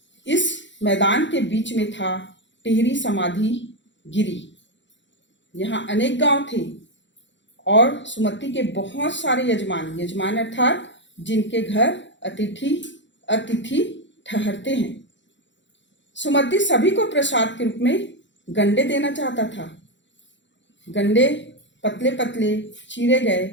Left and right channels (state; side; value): late; right; 0.53 ms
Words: इस मैदान के बीच में था टिहरी समाधि गिरी। यहाँ अनेक गांव थे और सुमति के बहुत सारे यजमान अर्थात जिनके घर अतिथि ठहरते हैं। सुमति सभी को प्रसाद के रूप में गंडे देना चाहता था। गंडे पतले पतले चीरे गए